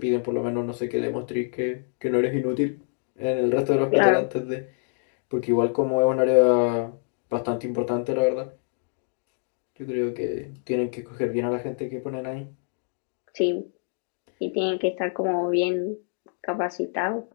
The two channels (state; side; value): silent; right; 61 dB below the other